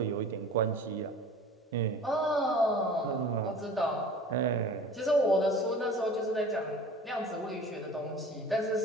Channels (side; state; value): both; normal; correlation 0.42